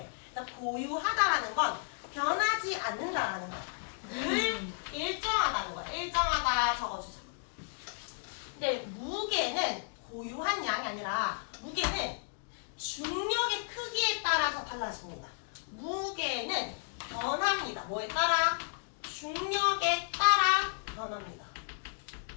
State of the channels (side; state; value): right; silent; digital silence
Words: 그러니까 고유하다라는 건 변하지 않는다라는 거야. 늘 일정하다는 거야. 일정하다 적어주자. 근데 무게는 고유한 양이 아니라 무게는 중력의 크기에 따라서 달라집니다. 무게는 변합니다. 뭐에 따라? 중력에 따라 변합니다.